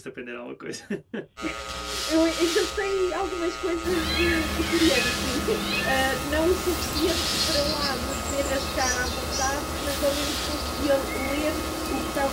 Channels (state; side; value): identical; both; correlation 1.00